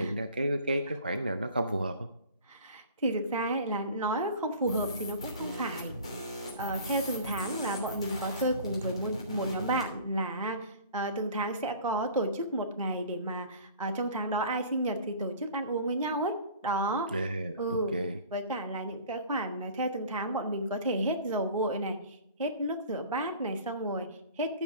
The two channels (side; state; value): both; inverted; correlation -0.44